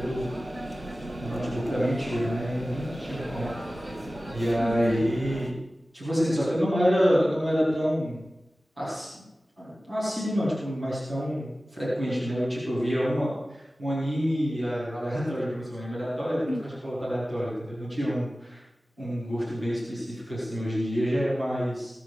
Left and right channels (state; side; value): normal; both; correlation 0.96